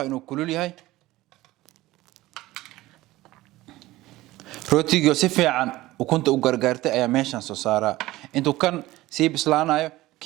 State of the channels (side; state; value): left; quieter; 17.7 dB